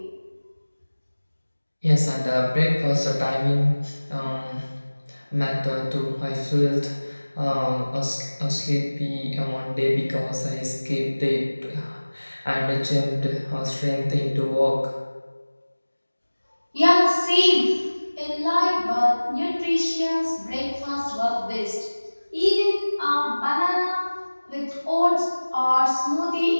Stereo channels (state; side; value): inverted; both; correlation -1.00